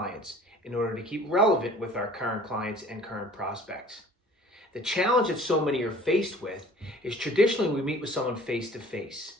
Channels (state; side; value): normal; both; correlation 0.49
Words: in order to keep relevant with our current clients and current prospects. The challenge that so many are faced with is traditionally we meet with someone face to face.